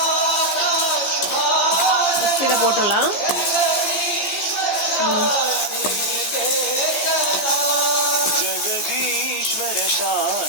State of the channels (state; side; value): late; right; 14 ms